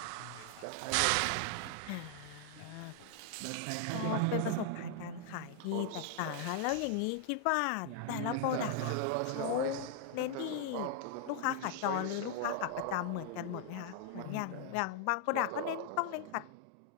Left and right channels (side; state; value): both; different; correlation 0.00